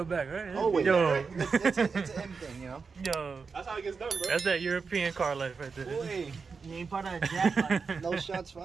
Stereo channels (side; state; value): left; quieter; 5.1 dB